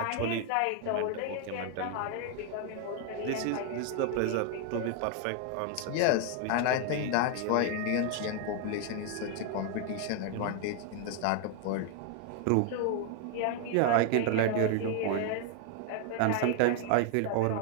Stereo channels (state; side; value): different; both; correlation 0.00